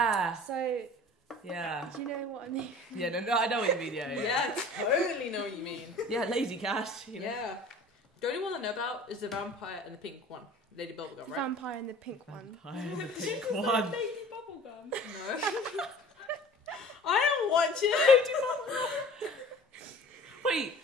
So... Yeah. Do you know what I mean? Yeah, no, I know what you mean, yeah. Yeah, I totally know what you mean. Yeah, lazy cash, you know. Yeah. The only one I know about is the vampire and the pink one. Lady Bubblegum, The right? vampire and the pink one. Vampire, the She pink just said one. Lady Bubblegum. No. I don't watch it. Wait.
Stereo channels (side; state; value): both; normal; correlation 0.45